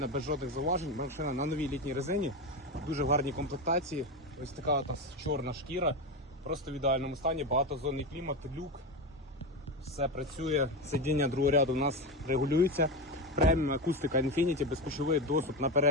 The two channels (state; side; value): normal; both; correlation 0.17